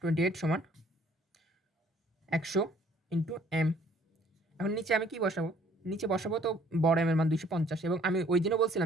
28 সমান 100 ইন্টু এম। এখন নিচে আমি কি বসাবো? নিচে বসাবো তো বড় এম এর মান 250, এবং আমি ওই দিনও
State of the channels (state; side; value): normal; both; correlation 0.59